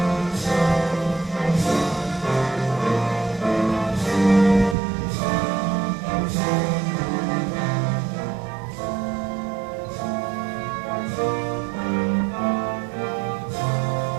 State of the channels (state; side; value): drops out; left; at 4.8 s